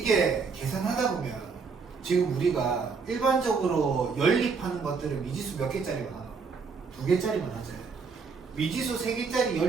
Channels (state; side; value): quieter; left; 5.1 dB